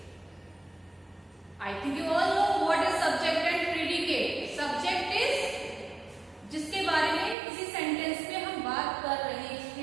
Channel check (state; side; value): drops out; left; at 7.4 s